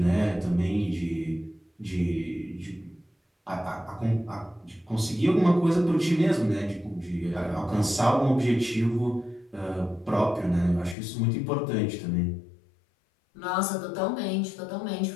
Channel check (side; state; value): right; drops out; at 11.0 s